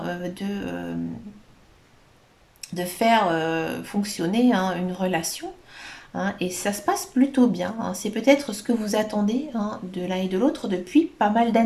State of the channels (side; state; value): both; identical; correlation 1.00